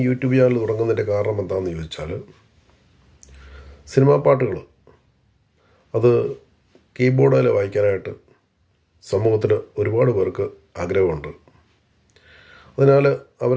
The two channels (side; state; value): both; identical; correlation 1.00